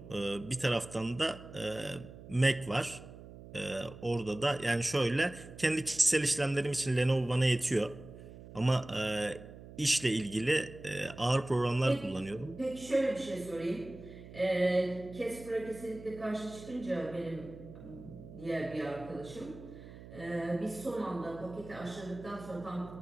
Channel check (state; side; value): noise; right; hum, 16 dB below the sound